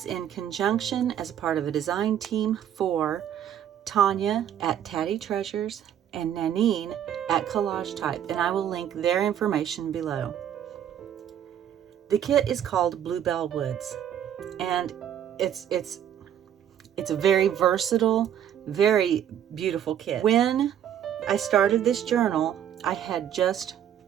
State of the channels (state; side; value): quieter; left; 9.9 dB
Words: in conjunction as a part of a design team for Tania at Tatty Treasures and Nanine at Collage Type, and I will link their information below. The kit is called Bluebell Woods, and it's a very versatile, very beautiful kit. When I started this journal, I had just